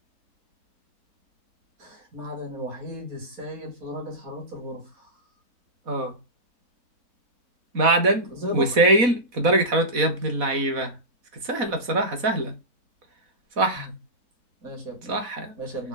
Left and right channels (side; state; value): left; late; 4.1 ms